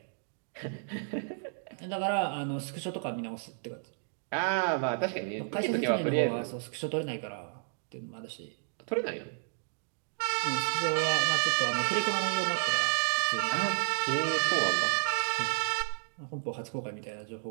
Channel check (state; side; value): silent; left; digital silence